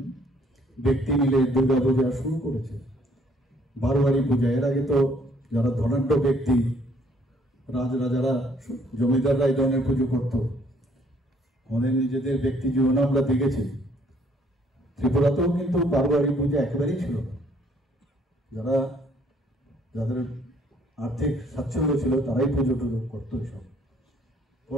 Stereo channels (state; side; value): normal; both; correlation 0.63